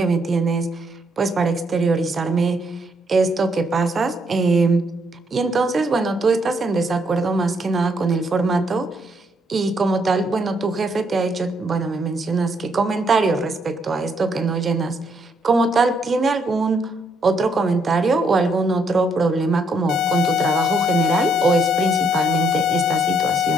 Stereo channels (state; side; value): normal; both; correlation 0.72